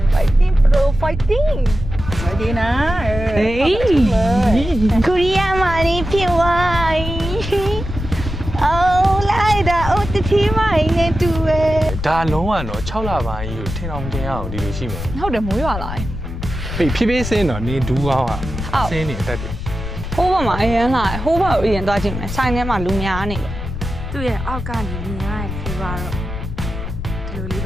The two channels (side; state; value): left; noise; rumble, 7 dB below the sound